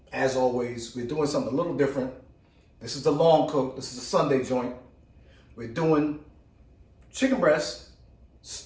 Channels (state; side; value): identical; both; correlation 1.00